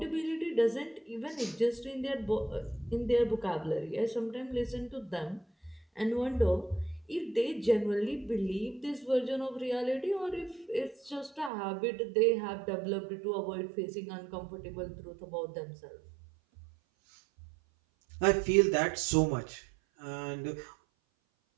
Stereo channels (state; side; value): drops out; left; at 11.5 s